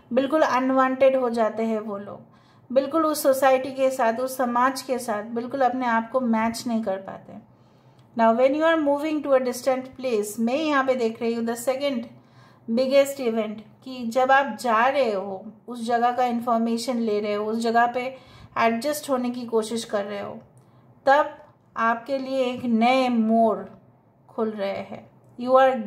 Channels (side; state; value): both; identical; correlation 1.00